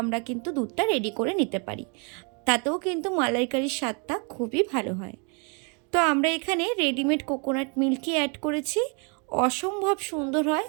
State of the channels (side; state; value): left; quieter; 35.9 dB